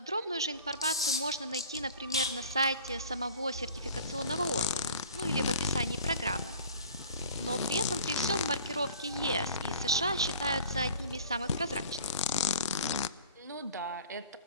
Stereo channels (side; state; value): both; inverted; correlation -0.45